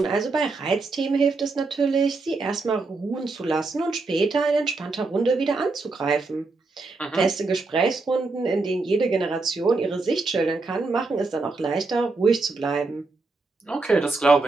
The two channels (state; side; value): quieter; left; 3.7 dB